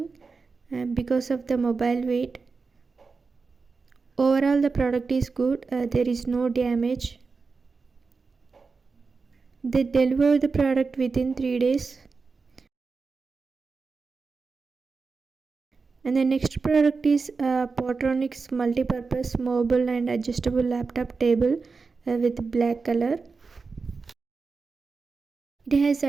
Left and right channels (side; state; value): left; quieter; 4.5 dB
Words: because of the mobile weight. Overall, the product is good. There is no damage. They deliver the product within 3 days. And the next product is Portronics multi-purpose mobile and adjustable laptop table with black color. It has